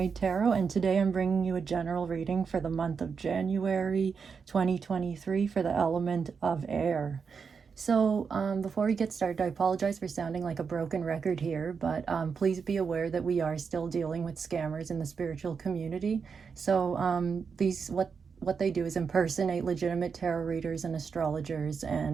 Tarot, and today I'm bringing you a general reading for the month of January 2023 for the element of air. So, before we get started, I apologize for sounding like a broken record here, but please be aware that we are still dealing with scammers in the spiritual community. So, what they do is impersonate legitimate tarot readers and astrologers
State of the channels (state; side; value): quieter; left; 5.8 dB